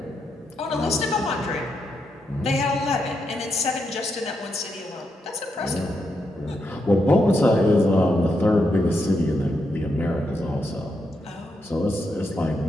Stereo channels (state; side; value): normal; both; correlation 0.82